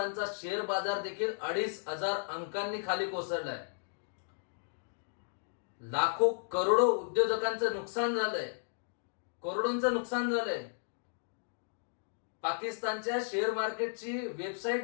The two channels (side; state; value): right; silent; digital silence